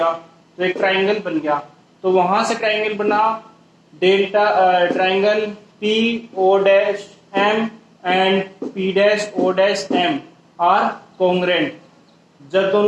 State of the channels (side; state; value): both; identical; correlation 1.00